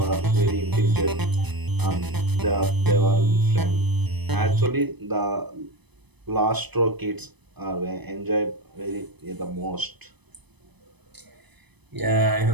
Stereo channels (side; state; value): left; late; 0.99 ms